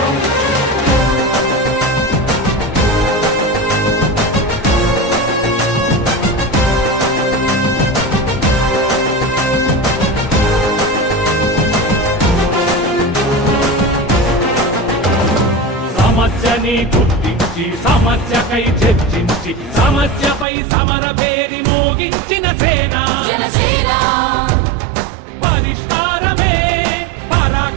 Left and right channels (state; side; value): drops out; left; at 20.5 s